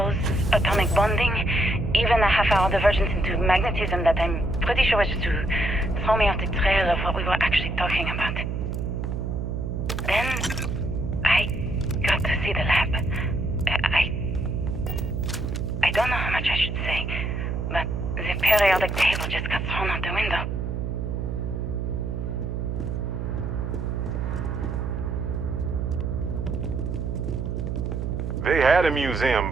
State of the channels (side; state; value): right; noise; hum, 2 dB below the sound